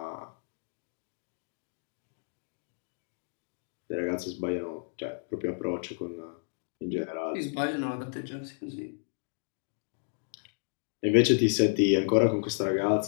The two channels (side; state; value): right; silent; digital silence